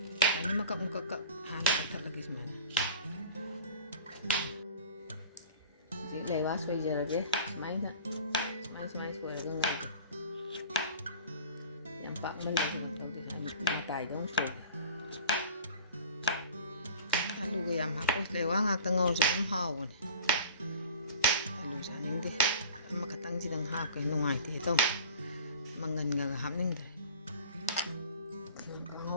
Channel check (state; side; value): inverted; both; correlation -0.41